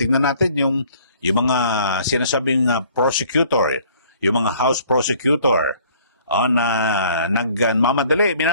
natin yung mga sinasabing prosecutor, yung mga House prosecutor na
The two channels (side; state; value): both; inverted; correlation -0.56